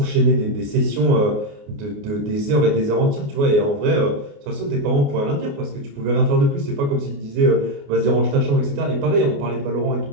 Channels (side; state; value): left; late; 28 ms